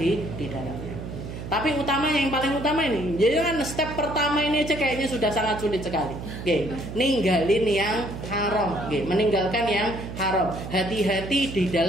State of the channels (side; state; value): right; noise; hum, 9 dB below the sound